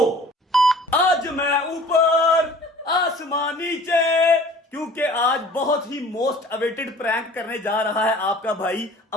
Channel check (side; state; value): both; normal; correlation 0.47